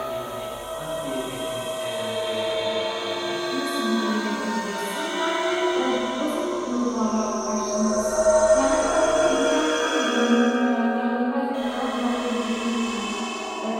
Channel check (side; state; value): both; identical; correlation 1.00